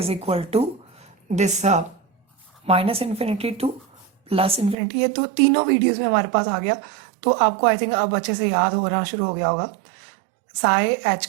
equal to this minus infinity to plus infinity. ये तो तीनों वीडियोस में हमारे पास आ गया, तो आपको आई थिंक अब अच्छे से याद होना शुरू हो गया होगा। Psi H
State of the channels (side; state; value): left; drops out; at 4.8 s